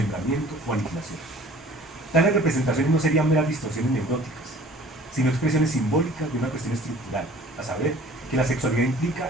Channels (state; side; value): normal; both; correlation 0.49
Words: o aniquilación. Tales representaciones no serían meras distorsiones neuróticas, sino expresiones simbólicas de una cuestión estructural, a saber, que la sexualidad